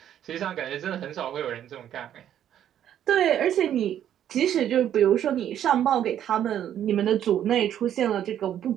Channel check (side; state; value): left; quieter; 10.5 dB